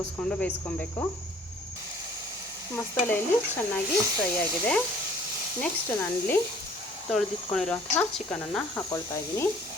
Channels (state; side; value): normal; both; correlation 0.54